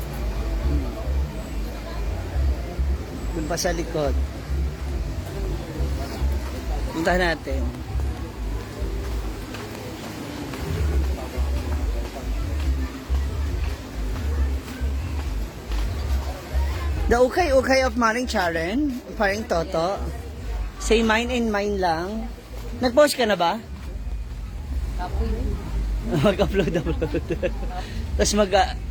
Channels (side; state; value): both; identical; correlation 1.00